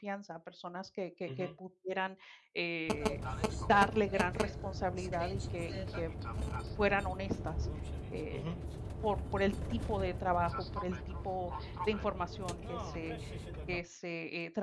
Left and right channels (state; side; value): identical; both; correlation 1.00